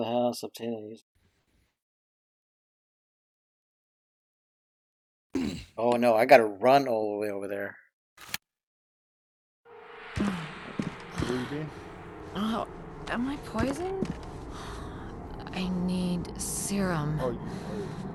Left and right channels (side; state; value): both; identical; correlation 1.00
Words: house, obtain these. Oh no, I gotta run all the way over there. Where you been? Oh, am I poisoned? I need serum. Oh,